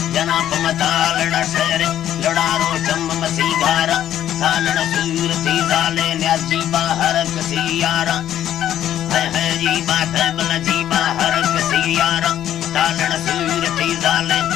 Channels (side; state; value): right; quieter; 11.4 dB